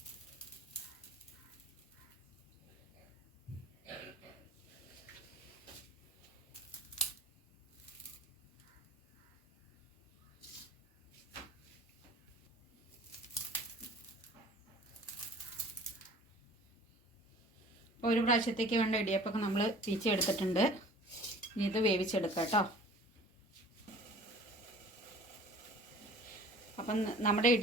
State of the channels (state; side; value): normal; both; correlation 0.47